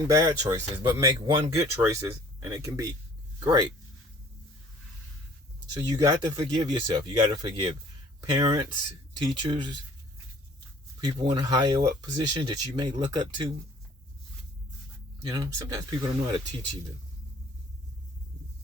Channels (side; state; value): both; normal; correlation 0.53